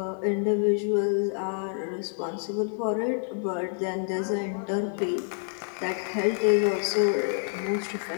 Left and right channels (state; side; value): silent; right; 57 dB below the other